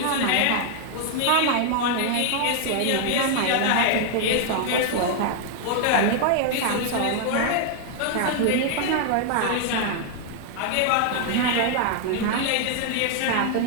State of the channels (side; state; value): both; different; correlation 0.00